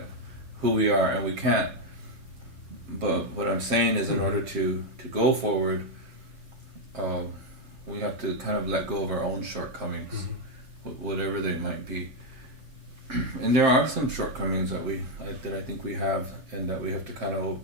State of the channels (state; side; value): late; left; 7.6 ms